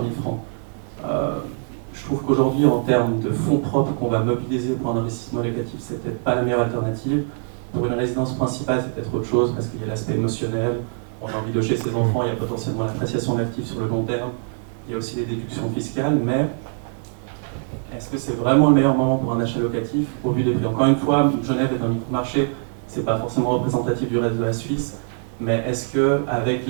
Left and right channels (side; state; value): left; silent; 64 dB below the other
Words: 000 francs. Je trouve qu'aujourd'hui, en termes de fonds propres qu'on va mobiliser pour un investissement locatif, c'est peut-être pas la meilleure alternative. Pour une résidence principale, c'est peut-être autre chose, parce qu'il y a l'aspect émotionnel, on a envie de loger ses enfants, il y a potentiellement l'appréciation de l'actif sur le long terme, il y a aussi les déductions fiscales, mais est-ce que c'est vraiment le meilleur moment pour un achat locatif au vu des prix? Encore une fois, Genève est un micro-marché, c'est pas forcément représentatif du reste de la Suisse, mais est-ce qu'avec